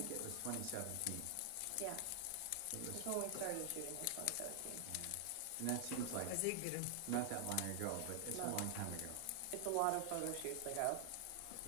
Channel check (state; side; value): different; both; correlation 0.00